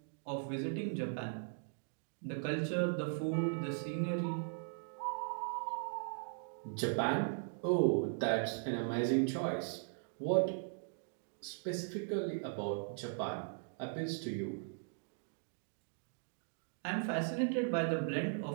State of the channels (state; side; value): silent; left; digital silence